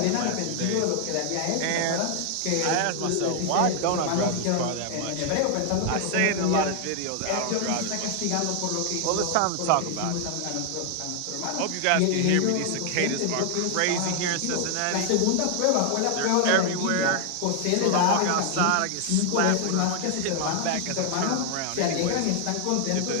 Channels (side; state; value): both; different; correlation 0.00